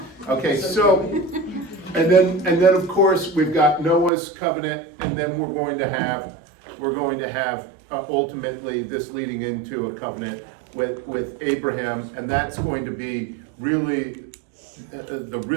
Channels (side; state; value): left; drops out; at 4.1 s